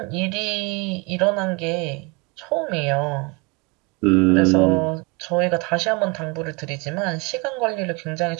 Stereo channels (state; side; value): quieter; left; 27.8 dB